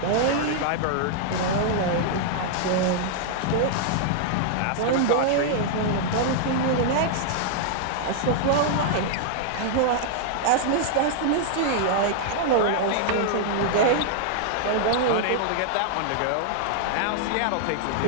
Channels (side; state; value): both; different; correlation -0.01